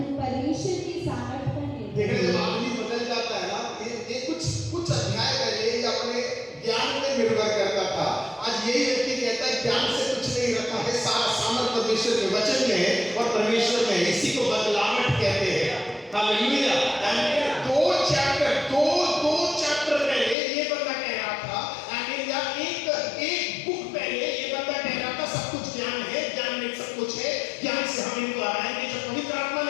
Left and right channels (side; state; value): right; drops out; at 20.4 s